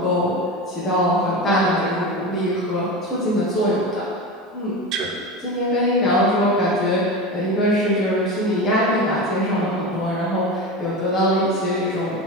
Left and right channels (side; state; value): both; normal; correlation 0.25